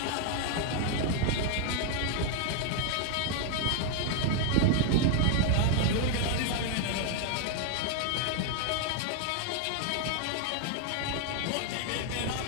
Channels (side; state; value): both; different; correlation 0.00